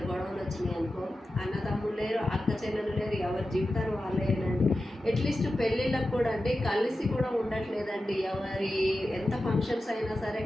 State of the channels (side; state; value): both; normal; correlation 0.92